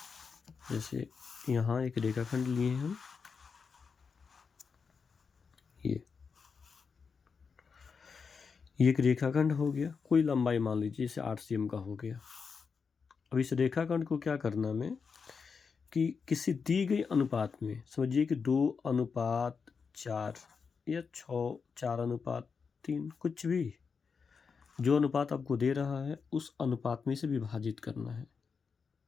जैसे यहाँ एक रेखाखंड लिए हम, ये। ये एक रेखाखंड हो गया, कोई लंबाई मान लीजिए जैसे 8 सीएम का हो गया। अब इस रेखाखंड को क्या करना हमें कि किसी दी गई अनुपात में, समझिए कि 2:4 या 4:3, कुछ भी जो अनुपात आपको दे रहा है उस अनुपात में से विभाजित करना है।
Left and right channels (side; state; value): right; quieter; 5.5 dB